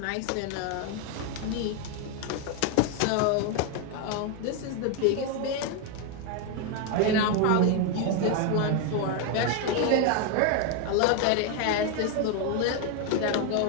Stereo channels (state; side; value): different; both; correlation 0.01